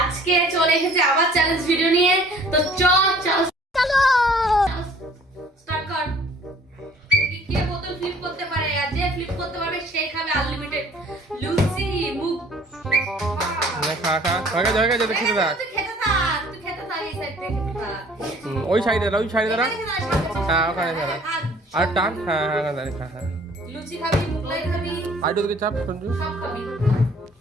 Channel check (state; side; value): normal; both; correlation 0.54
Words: চলে এসেছে আবার চ্যালেঞ্জ ভিডিও নিয়ে। তো চলো স্টার্ট কর। কে বোতল ফ্লিপ করতে পারে, আর যে ফ্লিপ করতে পারবে সেই খাবে আনলিমিটেড লুচি মুখ। খা খা হয়ে গেছে যদি খেতে থাক। তুই খেতে থাক এই সাইড থেকে খা। ওই সাইডে দাঁড়া হ্যাঁ ওখানে দাঁড়া আর টান হ্যাঁ হ্যাঁ দাঁড়িয়ে খা হ্যাঁ লুচি খাবি, মুগলাই খাবি, আইডো দিকে চাপ সঞ্জু সব খাবি।